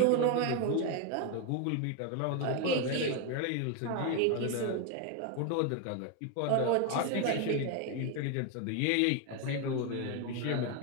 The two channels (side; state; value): both; different; correlation 0.01